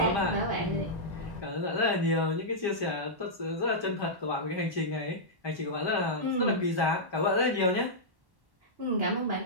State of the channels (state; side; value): late; left; 1.1 ms